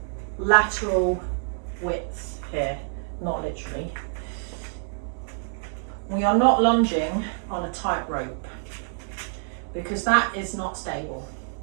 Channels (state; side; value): silent; left; digital silence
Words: lateral width here? Not literally. We are not lunging on a tightrope because that is not stable.